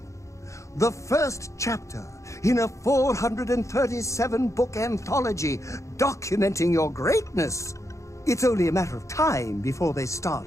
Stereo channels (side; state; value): right; late; 0.15 ms